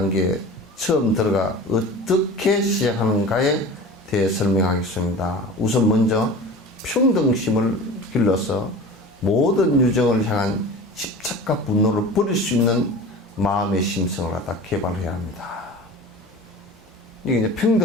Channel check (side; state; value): both; normal; correlation 0.37